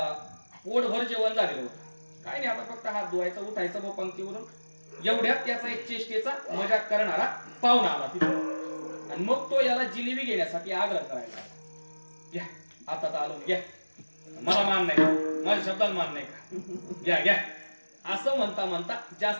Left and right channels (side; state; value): both; inverted; correlation -1.00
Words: पोटभर जेवण झालेलं होतं, काय नाही आता फक्त हात धुवायचा, उठायचं व पंक्तीवरून, एवढ्यात त्याचा एक चेष्टेचा मजाक करणारा पाहुणा आला तिथे आणि मग तो याला जिलेबी घेण्यासाठी आग्रह करायला, घ्या आता तर आलो, घ्या, मला मान नाही, माझ्या शब्दाला मान नाही का, घ्या घ्या असं म्हणता म्हणता